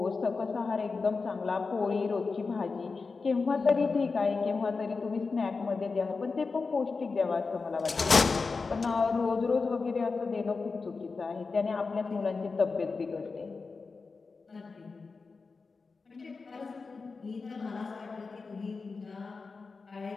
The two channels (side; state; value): right; quieter; 4.4 dB